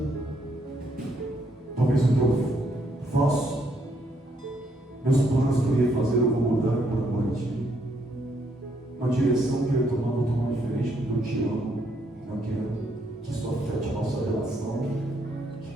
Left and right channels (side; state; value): both; normal; correlation 0.73